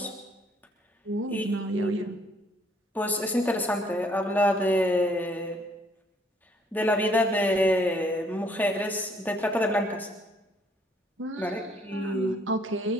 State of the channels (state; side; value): normal; both; correlation 0.65